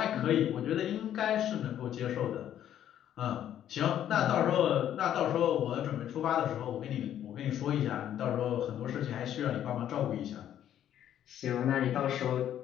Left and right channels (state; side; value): quieter; right; 10.8 dB